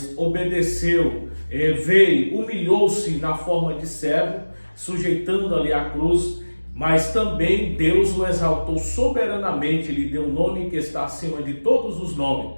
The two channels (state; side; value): inverted; both; correlation -1.00